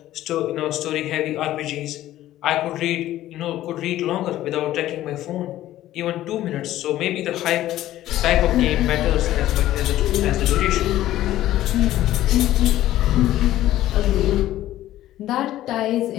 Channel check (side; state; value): right; quieter; 14.1 dB